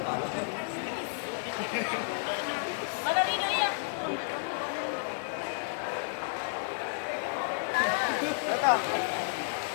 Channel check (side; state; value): right; silent; digital silence